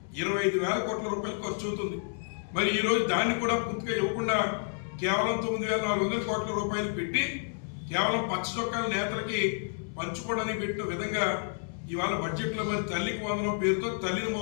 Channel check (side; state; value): right; silent; 56 dB below the other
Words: 25,000 కోట్ల రూపాయలు ఖర్చు అవుతుంది. మరి ఈరోజు దాన్ని కూడా పూర్తిగా ఇవ్వకుండా కేవలం 9,400 కోట్ల రూపాయలు పెట్టి కేవలం పచ్చ చొక్కాల నేతలకి పంచుకోవడానికి పెట్టిన విధంగా ఇవాళ బడ్జెట్లో మరి తల్లికి వందనం పేరుతో తల్లిని